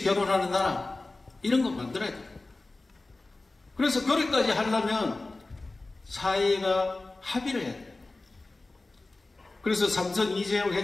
결혼하는 나라, 이런 거 만들어야 돼요. 그래서 그렇게까지 하려면 사회가 합의를 해야 돼요. 그래서 삼성 이재용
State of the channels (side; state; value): right; quieter; 3.2 dB